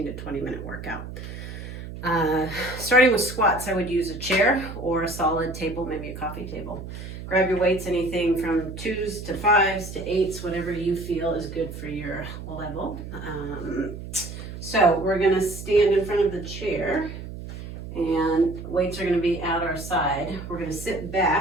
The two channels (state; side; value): noise; right; hum, 10 dB below the sound